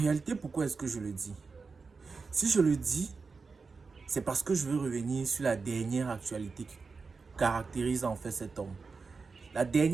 pourquoi est-ce que je le dis? Si je le dis, c'est parce que je veux revenir sur la dernière actualité qui caractérise en fait cet homme. La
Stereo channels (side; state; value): left; quieter; 4.6 dB